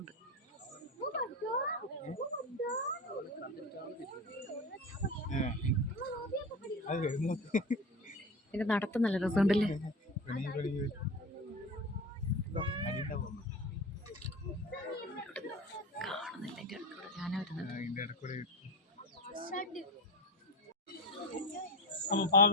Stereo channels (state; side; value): normal; both; correlation 0.25